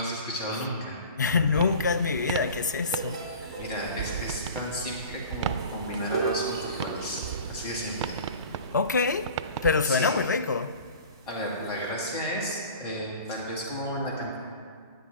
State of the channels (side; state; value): both; inverted; correlation -0.41